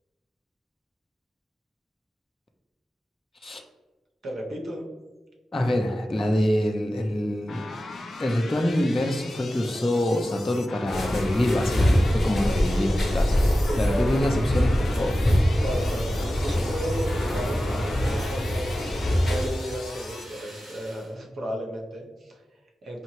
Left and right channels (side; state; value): both; normal; correlation 0.94